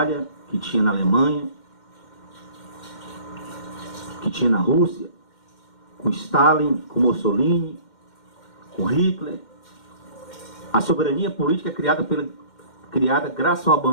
que tinha na Alemanha, que tinha na Rússia, com Stalin, com Mussolini, com Hitler. A soberania política é criada graças ao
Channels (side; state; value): right; late; 2.1 ms